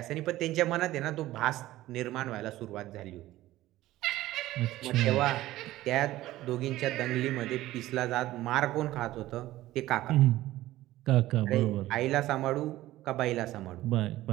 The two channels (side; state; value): left; quieter; 15.8 dB